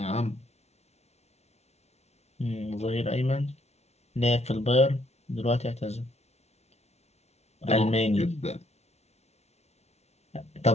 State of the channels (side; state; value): right; late; 0.31 ms